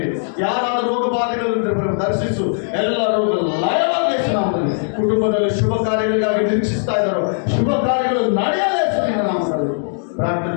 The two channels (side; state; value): right; silent; digital silence